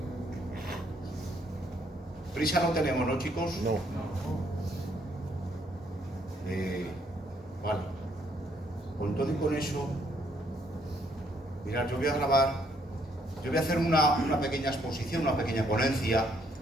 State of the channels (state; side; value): normal; both; correlation 0.69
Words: prisa no tenemos, ¿no, chicos? No. Vale, con todo y con eso, mirad, yo voy a grabar, yo voy a hacer una pequeña exposición, una pequeña ponencia